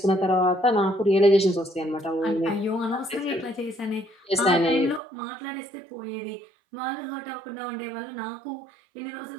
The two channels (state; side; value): drops out; left; at 5.0 s